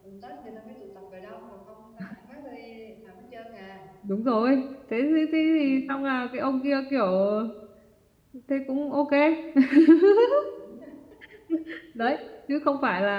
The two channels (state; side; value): identical; both; correlation 1.00